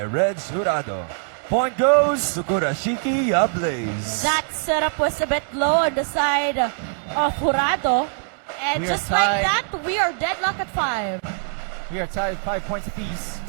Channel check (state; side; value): silent; left; 61 dB below the other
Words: Reg Jurado. Point goes to Kurashiki Ablaze. That setup was a bit low on the side of Jurado. And We are just like tied. that, we are deadlocked at 5. We are tied 5 points apiece.